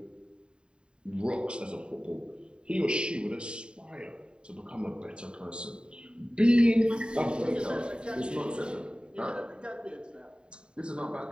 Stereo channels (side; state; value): left; late; 0.051 ms